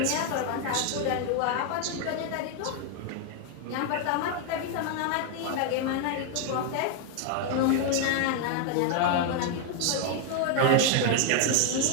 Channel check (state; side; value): different; both; correlation 0.00